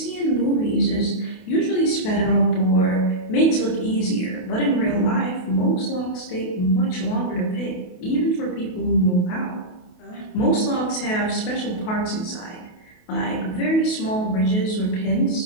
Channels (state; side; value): late; right; 28 ms